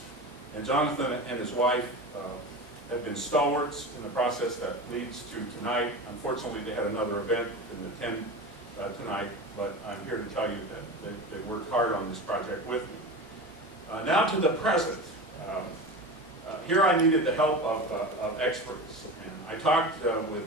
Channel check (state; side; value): normal; both; correlation 0.28